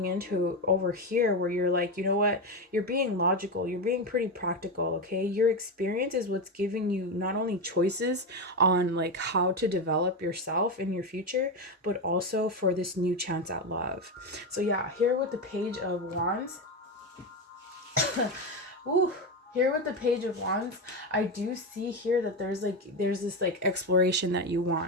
into over here where you're like, you know what, you're being logical, you're being pretty practical. Okay, your experience is what's giving you not only choices on like how to develop yourself in your future, but also for this new chance at love. So yeah, here with the Page of Wands. Ooh. Here with the Page of Wands, I do see here that there's this like exploration that you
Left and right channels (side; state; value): both; normal; correlation 0.13